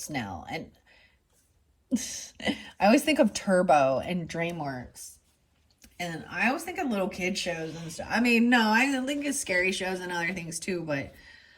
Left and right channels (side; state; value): both; identical; correlation 1.00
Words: and I always think of Turbo and DreamWorks. And I always think of little kid shows and stuff. I mean, no, I think of scary shows and other things too, but